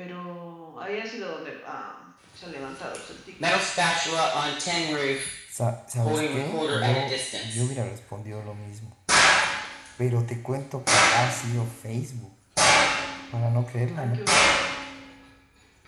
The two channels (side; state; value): both; identical; correlation 1.00